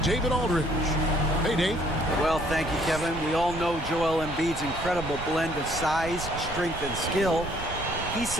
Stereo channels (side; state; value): right; noise; rumble, 10 dB below the sound